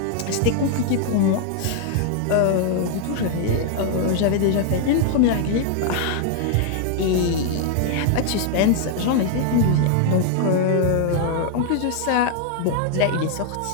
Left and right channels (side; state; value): both; different; correlation 0.00